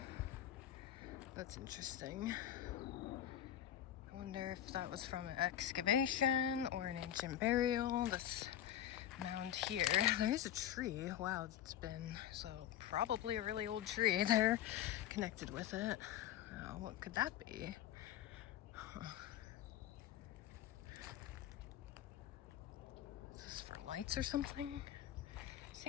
That's interesting. I wonder if that was from an excavation or an ancient burial. This mound here, there's a tree. Wow, it's been, so probably a really old tree there connected with it. What could that be? Huh. Is this for lights or something?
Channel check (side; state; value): right; quieter; 11.2 dB